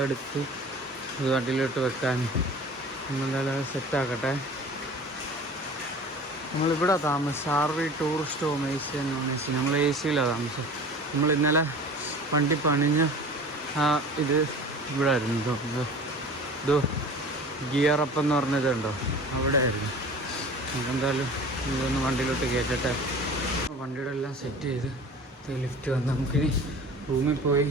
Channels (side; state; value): both; normal; correlation 0.40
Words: എടുത്ത് ഇത് വണ്ടിയിലോട്ട് വെക്കാൻ. നമ്മളെന്തായാലും അത് സെറ്റാക്കട്ടെ. നമ്മളിവിടെ താമസം ആർവി ടൂറിസ്റ്റ് ഹോം AC എന്ന്. നമ്മൾ AC-യിലാണ് താമസം. നമ്മൾ ഇന്നലെ വണ്ടി പണിഞ്ഞ ഇത് ഇവിടെ ആയിരുന്നു. ഇതോ ഗിയറപ്പ് എന്ന് പറഞ്ഞതുണ്ടോ, അവിടെ ആയിരുന്നു. നമുക്കെന്തായാലും ഇതൊന്ന് വണ്ടിയിലോട്ട് കയറ്റട്ടെ. വണ്ടിയുടെ എല്ലാം സെറ്റ് ചെയ്ത് ലിഫ്റ്റ് വന്ന് നമുക്കിനി റൂമിൽ പോയി